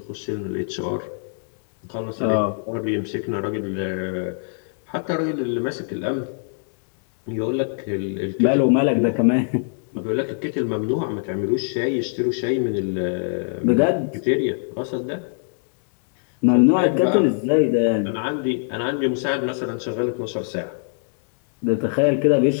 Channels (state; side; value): silent; right; 64 dB below the other